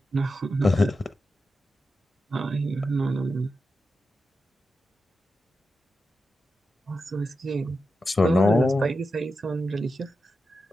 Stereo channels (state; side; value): normal; both; correlation 0.90